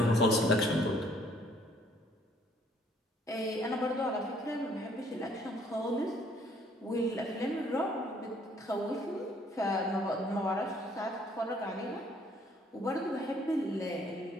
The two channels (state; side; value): normal; both; correlation 0.62